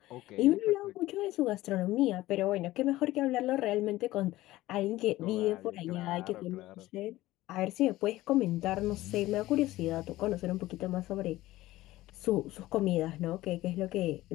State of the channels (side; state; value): right; quieter; 16.9 dB